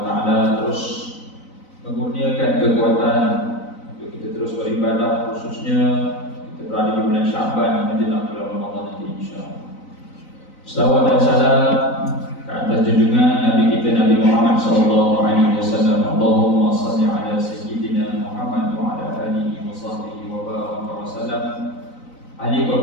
taala terus mengurniakan kekuatan untuk kita terus beribadah, khususnya kita berada di bulan Syaban menjelang bulan Ramadan nanti insya-Allah. Salawat dan salam ke atas junjungan Nabi kita Nabi Muhammad sallallahu alaihi wasallam. Allahumma shalli ala sayyidina Muhammad wa ala alihi wa sahbihi wa baraka wa sallam. Ali para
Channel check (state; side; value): late; right; 3.9 ms